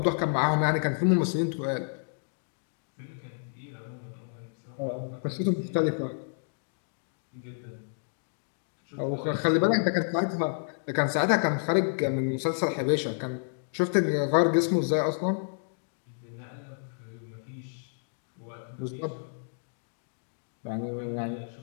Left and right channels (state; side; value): silent; right; digital silence